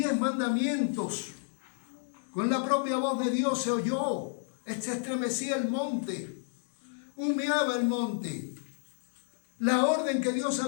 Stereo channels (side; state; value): right; silent; digital silence